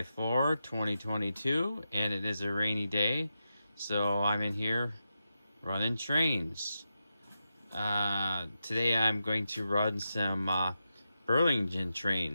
4, 2022, and it is a rainy day, so I'm in here running trains. Today I'm going to run some Burlington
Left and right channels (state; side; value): inverted; both; correlation -0.88